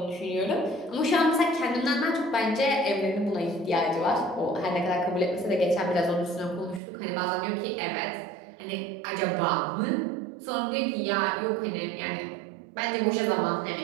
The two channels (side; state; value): left; drops out; at 6.8 s